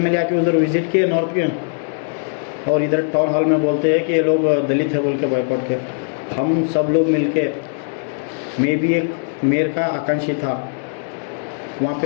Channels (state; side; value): silent; right; 66 dB below the other